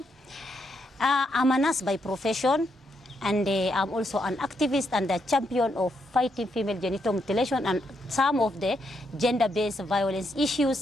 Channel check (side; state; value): both; normal; correlation 0.79